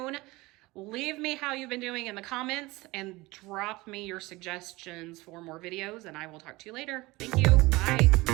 Leave me how you've been doing in the comments and drop me your suggestions for more videos, and I will talk to you later. Thank you.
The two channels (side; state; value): left; quieter; 21.4 dB